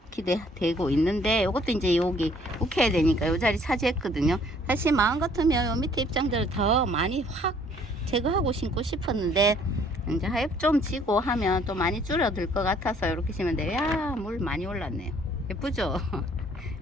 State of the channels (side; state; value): both; normal; correlation 0.60